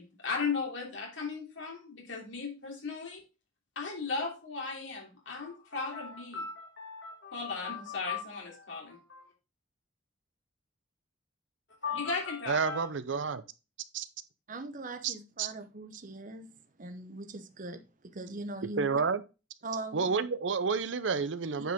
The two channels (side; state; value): both; normal; correlation -0.15